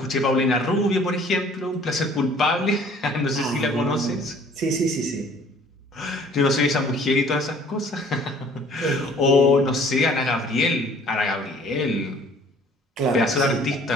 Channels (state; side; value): normal; both; correlation 0.54